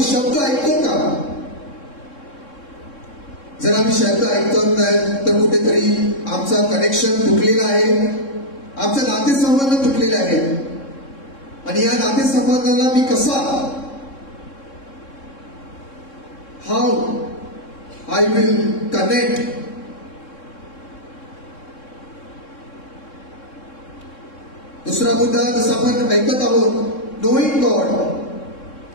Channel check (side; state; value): right; late; 3.7 ms